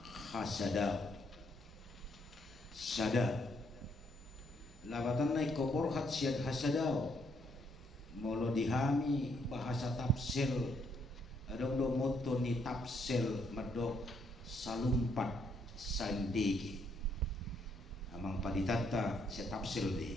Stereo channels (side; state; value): both; normal; correlation 0.72